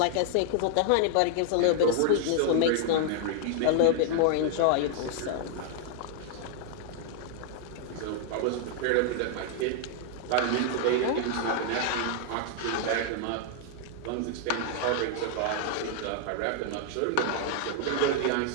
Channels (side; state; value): both; different; correlation 0.00